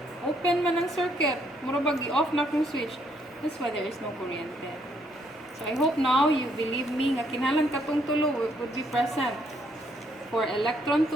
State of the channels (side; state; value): both; normal; correlation 0.70